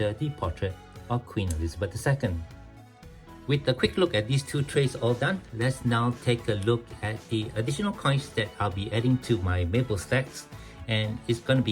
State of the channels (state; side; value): identical; both; correlation 1.00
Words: the portrait of Queen Elizabeth II. With a quick look at these two trays all done, let's now take a look at the additional coins that I'll be adding to my maple stacks. And it's going to